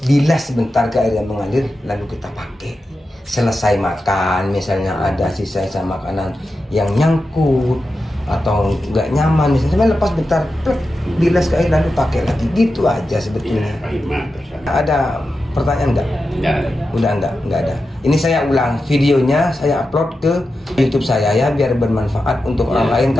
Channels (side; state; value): both; normal; correlation 0.91